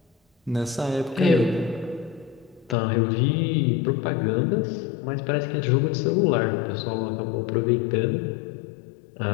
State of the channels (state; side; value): drops out; right; at 2.8 s